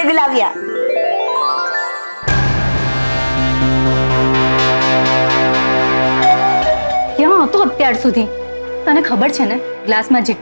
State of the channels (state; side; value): inverted; both; correlation -1.00